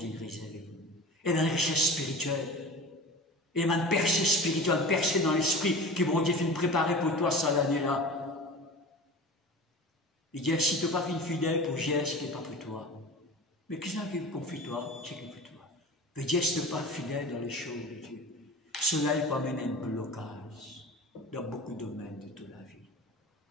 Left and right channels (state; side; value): normal; both; correlation 0.35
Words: réserver. Et dans la richesse spirituelle. Et dans une percée spirituelle, une percée dans l'esprit, qui vont dire finir préparer pour toi ça l'année-là. Il dit, si tu n'as pas fait une fidèle pour gérer ce qui n'est pas pour toi, mais qu'est-ce qui confie toi, ce qui est pour toi? Mais Dieu, si tu n'es pas fidèle dans les choses de Dieu, cela peut amener un blocage dans beaucoup de domaines de toute la vie.